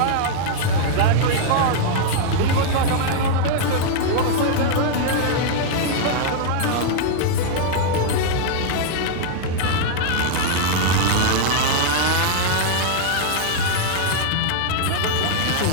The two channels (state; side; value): different; both; correlation -0.01